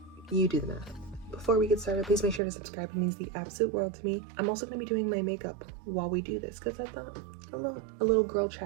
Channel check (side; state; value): left; drops out; at 2.4 s